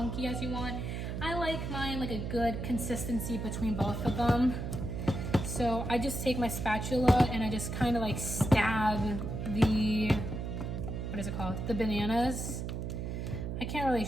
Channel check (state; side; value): noise; right; hum, 4 dB below the sound